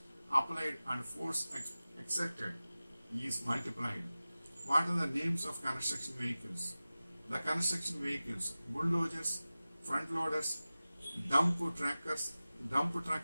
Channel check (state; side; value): inverted; both; correlation -0.97